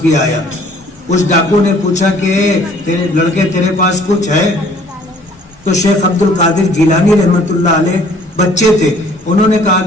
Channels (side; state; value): both; normal; correlation 0.57